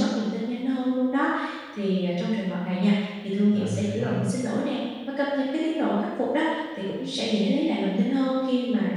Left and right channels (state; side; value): identical; both; correlation 1.00